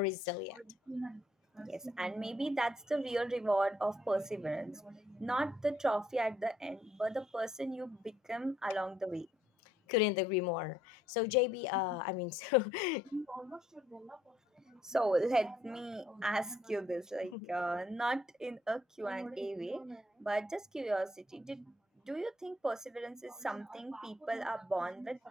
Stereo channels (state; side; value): normal; both; correlation 0.69